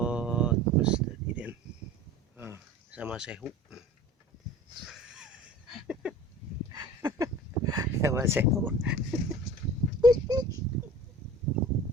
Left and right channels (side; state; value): both; normal; correlation 0.41